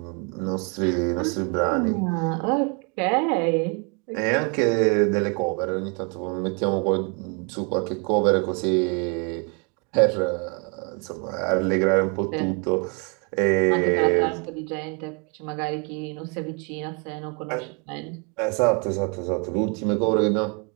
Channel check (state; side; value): quieter; left; 33.9 dB